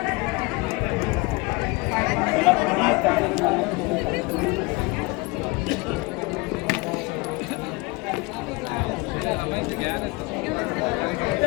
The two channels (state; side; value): quieter; right; 25.5 dB